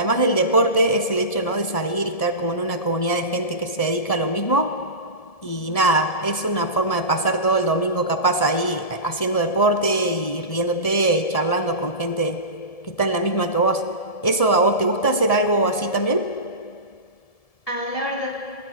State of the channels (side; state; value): right; late; 1.7 ms